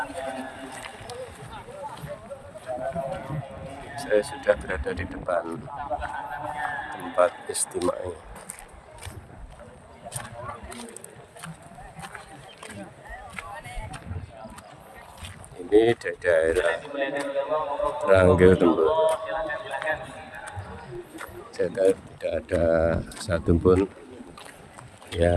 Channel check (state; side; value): identical; both; correlation 1.00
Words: Saya sudah berada di depan tempat istimai. Ini di daerah Ranggil Temboro. Tidak ada satupun